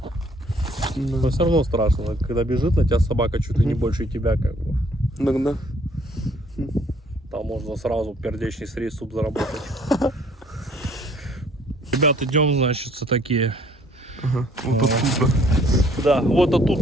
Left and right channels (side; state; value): both; normal; correlation 0.61